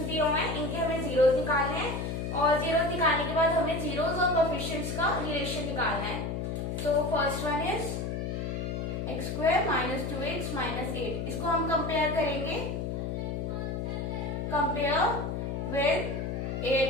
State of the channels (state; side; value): noise; left; hum, 3 dB below the sound